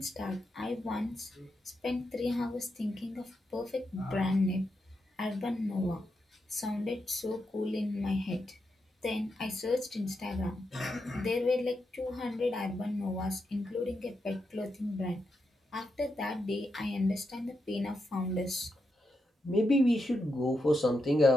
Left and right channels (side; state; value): both; normal; correlation 0.85